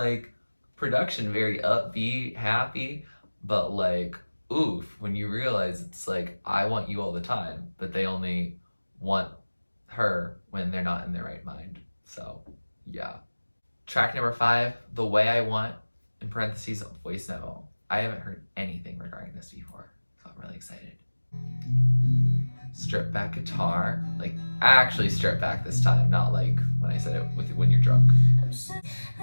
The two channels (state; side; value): inverted; both; correlation -1.00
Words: production very upbeat, happy, but like oof, when you realize it's like I want you all the time, but they only want her when they're not in their right mind. So yeah. Track number 5, The Way I Want, in parentheses, voice memo. I haven't heard anything regarding this before, so I'm really excited. Strip back guitar, like actually strip back this time, not like when I said it with When You're Drunk.